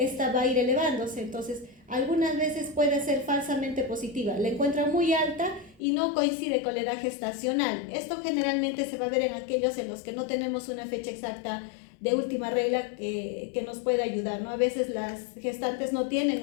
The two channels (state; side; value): drops out; right; at 5.8 s